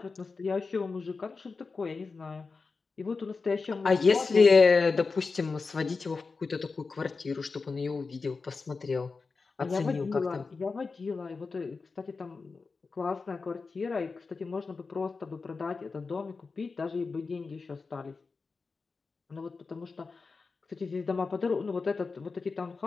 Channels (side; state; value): right; quieter; 4.4 dB